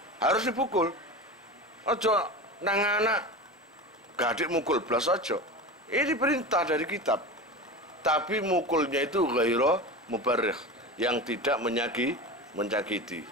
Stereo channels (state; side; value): normal; both; correlation 0.28